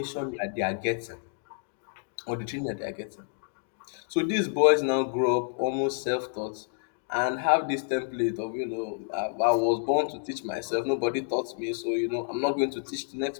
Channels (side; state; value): right; silent; digital silence